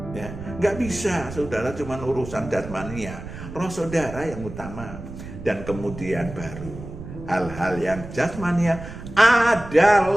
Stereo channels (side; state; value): right; noise; rumble, 12 dB below the sound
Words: Ya, nggak bisa saudara cuma urusan jasmania, roh saudara yang utama, dan kemudian baru hal-hal yang jasmania